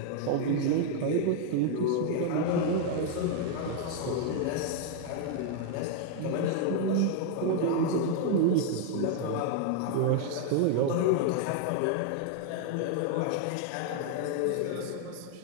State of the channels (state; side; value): different; both; correlation 0.00